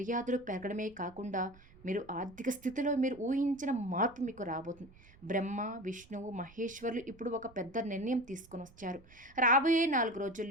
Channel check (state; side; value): noise; right; rumble, 24 dB below the sound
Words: పెరగడమే కాకుండా మీరు ఆర్థిక స్థితిలో మీరు ఊహించిన మార్పు మీకు రాబోతుంది. బ్రహ్మ, విష్ణువు, మహేశ్వరులు ఇప్పుడు ఒక పెద్ద నిర్ణయం తీసుకొని వచ్చారు. రాబోయే 4